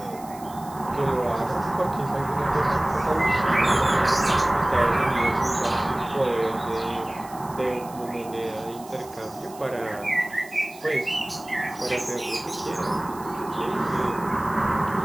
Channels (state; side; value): noise; right; hiss, 20 dB below the sound